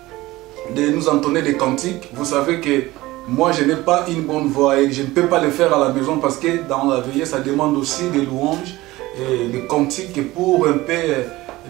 nous entonner des cantiques. Vous savez que moi, je n'ai pas une bonne voix et je ne peux pas le faire à la maison parce que dans la veillée, ça demande aussi des louanges et des cantiques pour un peu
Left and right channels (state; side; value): quieter; left; 18.6 dB